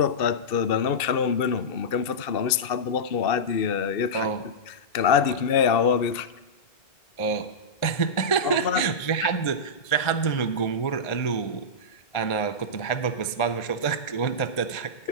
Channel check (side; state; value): right; late; 2.6 ms